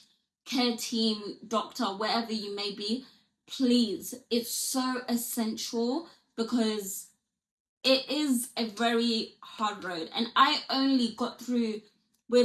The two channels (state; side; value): identical; both; correlation 1.00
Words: care team, doctor, wherever you may be. Please, it's so essential, because it is a very hard road. And I only got through